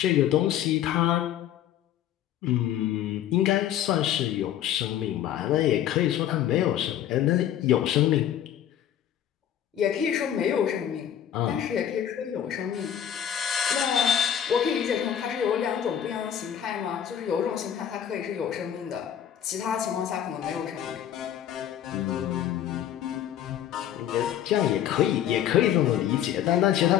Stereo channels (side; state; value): right; quieter; 10.3 dB